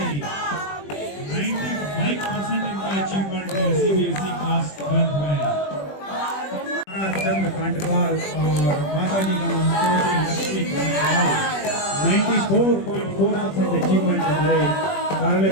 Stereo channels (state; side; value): late; right; 21 ms